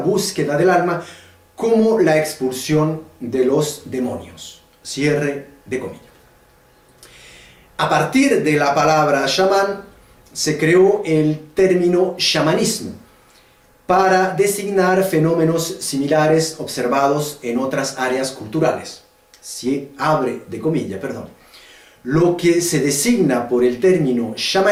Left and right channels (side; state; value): both; identical; correlation 1.00